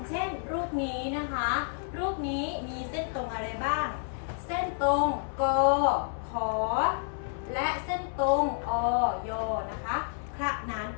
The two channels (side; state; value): right; silent; 56 dB below the other